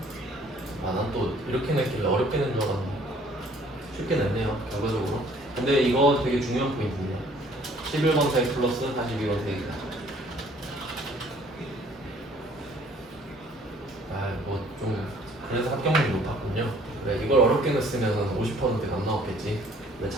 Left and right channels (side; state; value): both; normal; correlation 0.57